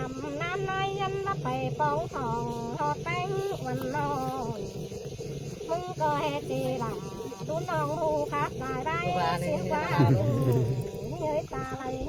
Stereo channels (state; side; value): identical; both; correlation 1.00